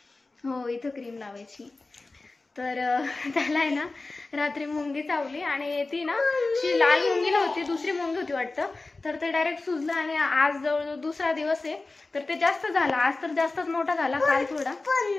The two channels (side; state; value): right; quieter; 3.4 dB